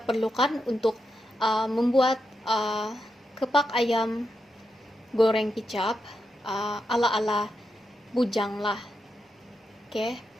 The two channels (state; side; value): normal; both; correlation 0.85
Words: perlukan untuk membuat kepak ayam goreng kicap ala-ala bujang lah. Oke.